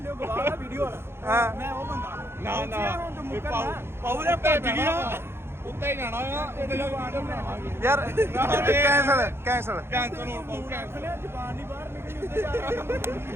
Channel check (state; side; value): late; left; 0.12 ms